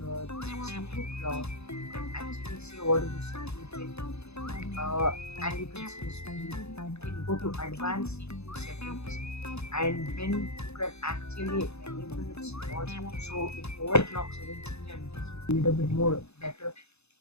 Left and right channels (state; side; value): late; right; 0.80 ms